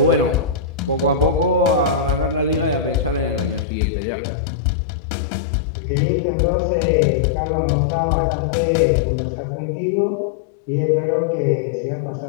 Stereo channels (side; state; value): right; drops out; at 3.7 s